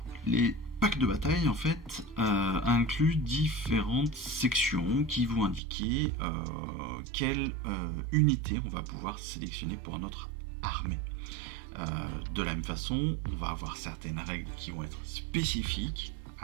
les packs de bataille, en fait, incluent différentes sections qui vont indiquer quelle unité on va pouvoir sélectionner pour notre armée. De la même façon, on va avoir certaines règles qui vont être spécifiques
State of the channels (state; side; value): drops out; left; at 5.6 s